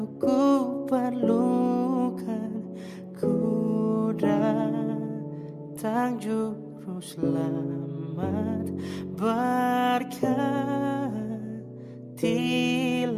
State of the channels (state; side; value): identical; both; correlation 1.00